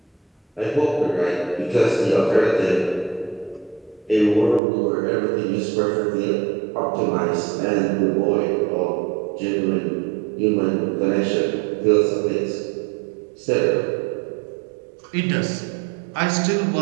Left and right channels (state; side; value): drops out; left; at 4.6 s